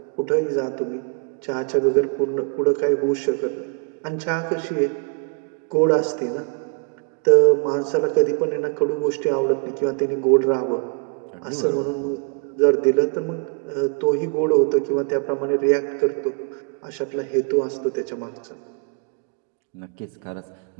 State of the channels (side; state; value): left; quieter; 39.8 dB